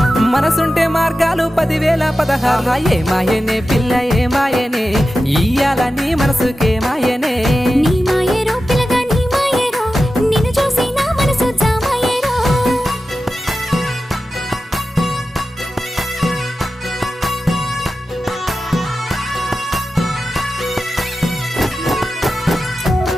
మనసుంటే మార్గాలు 10,016 ఏ మాయనే పిల్ల ఏ మాయనే ఇయ్యాల నీ మనసుకే మాయనే నీ మాయేరో పిల్లగా నీ మాయేరో నిన్ను చూసి నా మనసు జామాయేరో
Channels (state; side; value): normal; both; correlation 0.93